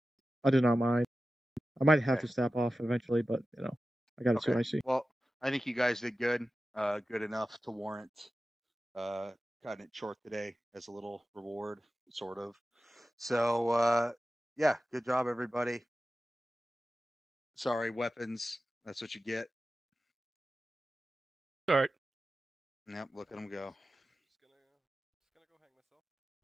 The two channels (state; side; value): normal; both; correlation 0.94